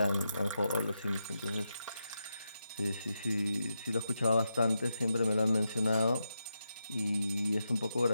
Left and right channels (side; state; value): both; inverted; correlation -0.86